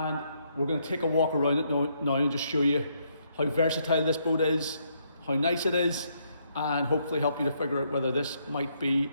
we're going to take a walk around it now and just show you how versatile this boat is, how nice it is, and hopefully help you to figure out whether this might be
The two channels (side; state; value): both; inverted; correlation -0.73